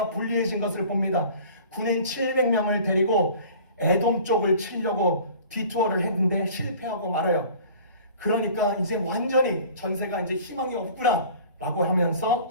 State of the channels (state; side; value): inverted; both; correlation -0.46